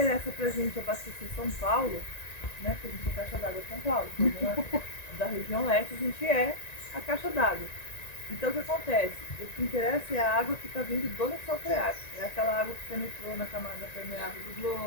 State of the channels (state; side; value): late; right; 1.9 ms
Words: pra gente abastecer São Paulo, né? Porque a gente é caixa d'água de São Paulo. Então, da região leste a gente é a caixa d'água. Então o que acontece? O que interessa é a água que está vindo do lençol freático. É aquela água que penetrou na camada permeável do